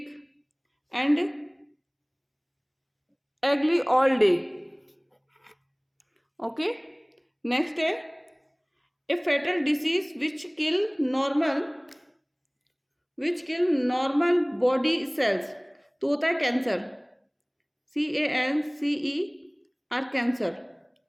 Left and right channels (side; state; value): both; identical; correlation 1.00